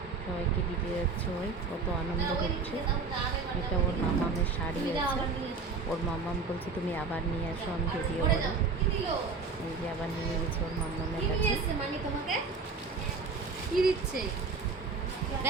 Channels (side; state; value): left; quieter; 4.5 dB